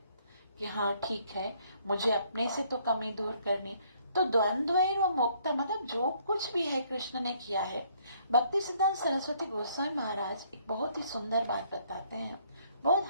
कि हाँ ठीक है, मुझे अपने से तो कमी दूर करनी। तो द्वंद्व और मुक्ता मतलब जो कुछ भी है कृष्ण ने किया है। भक्ति सिद्धांत सरस्वती गोस्वामी महाराज एक बहुत ही सुंदर बात बताते हैं, बहुत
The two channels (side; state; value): both; inverted; correlation -0.65